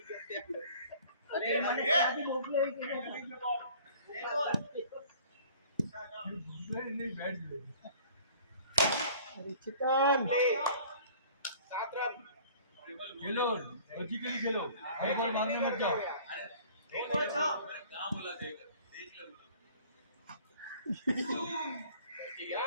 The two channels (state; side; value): inverted; both; correlation -0.50